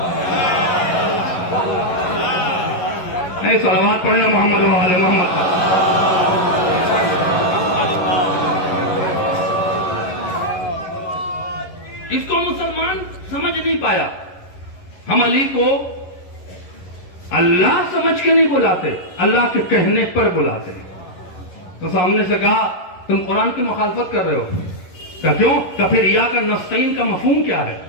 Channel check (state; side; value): late; right; 11 ms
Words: صلوات پڑھنا محمد و آل محمد. اس کو مسلمان سمجھ نہیں پایا. ہم علی کو اللہ سمجھ کے نہیں بلاتے, اللہ کے کہنے پر بلاتے ہیں. تو سامنے سے کہا تم قرآن کی مخالفت کر رہے ہو. کہ کیوں؟ کہ پھر ایاک نستعین کا مفہوم کیا ہے؟